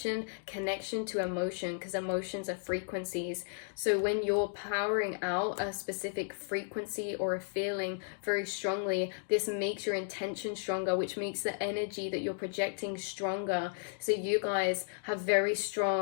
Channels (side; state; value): right; silent; digital silence